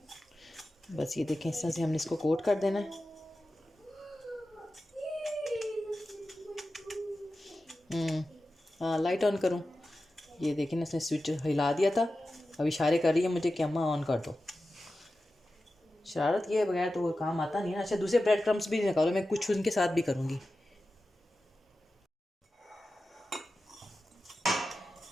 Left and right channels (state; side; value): normal; both; correlation 0.93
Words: बस ये देखें, इस तरह से हमने इसको कोट कर देना है। हाँ, लाइट ऑन करूँ? ये देखें, इसने स्विच हिला दिया था, अब इशारे कर रही है मुझे कि अम्मा ऑन कर दो। शरारत किए बगैर तो वो काम आता नहीं है। अच्छा, दूसरे ब्रेड क्रम्स भी निकालो, मैं कुछ उनके साथ भी करूँगी।